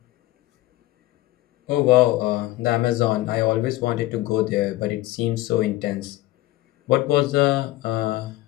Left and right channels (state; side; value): quieter; right; 17.3 dB